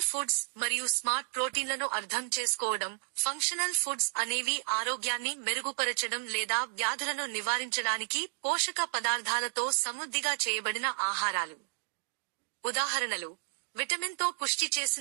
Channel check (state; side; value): silent; left; digital silence